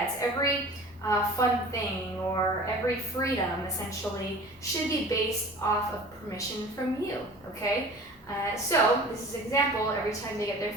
every fun thing or every freedom essentially should be based off of permission from you, okay? So this is an example, every time they get their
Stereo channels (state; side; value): normal; both; correlation 0.42